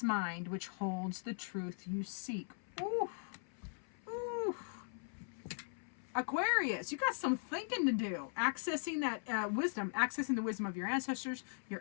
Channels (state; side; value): silent; right; 51 dB below the other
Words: mind, which holds the truth you seek. Ooh, ooh. Aquarius, you got some thinking to do. Accessing that wisdom, accessing the wisdom of your ancestors, your